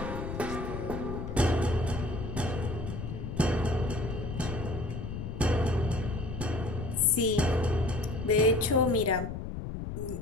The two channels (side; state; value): left; noise; rumble, 6 dB below the sound